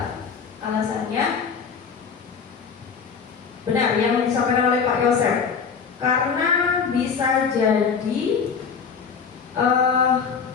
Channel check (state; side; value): quieter; right; 6.1 dB